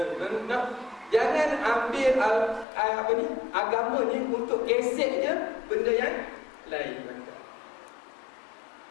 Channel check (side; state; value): right; drops out; at 2.7 s